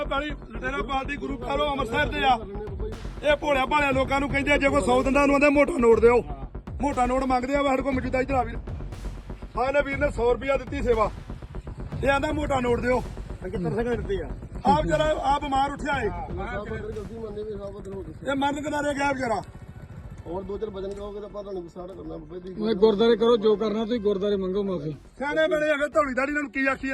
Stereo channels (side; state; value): both; identical; correlation 1.00